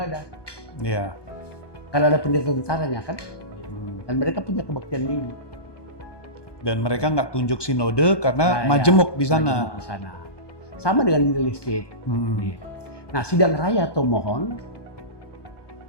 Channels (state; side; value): late; right; 1.2 ms